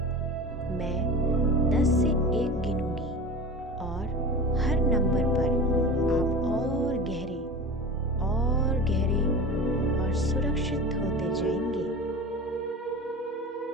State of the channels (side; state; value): both; normal; correlation 0.32